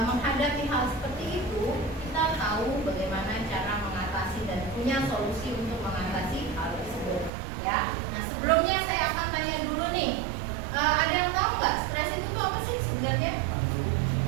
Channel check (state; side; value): drops out; left; at 7.3 s